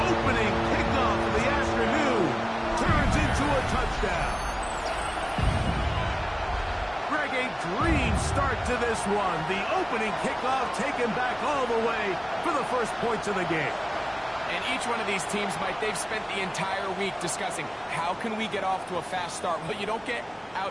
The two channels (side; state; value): both; identical; correlation 1.00